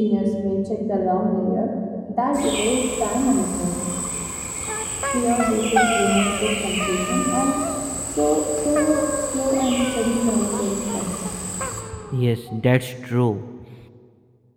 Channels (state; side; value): identical; both; correlation 1.00